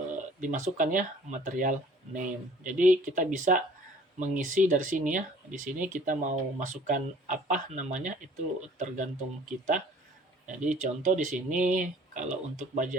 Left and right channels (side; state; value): both; normal; correlation 0.53